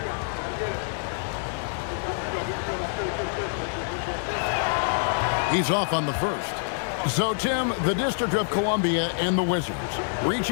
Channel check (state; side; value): silent; right; digital silence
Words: He's off on the first. So, Tim, the District of Columbia and the Wizards